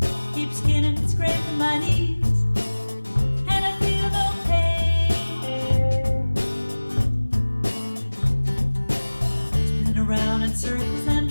Keep skinning and scraping my knees, and I feel no pain. Spinning around in circles and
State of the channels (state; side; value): inverted; both; correlation -1.00